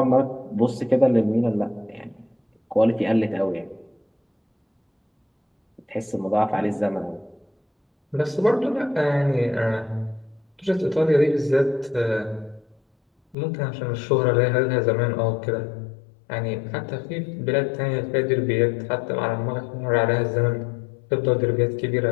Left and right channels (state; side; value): drops out; right; at 13.4 s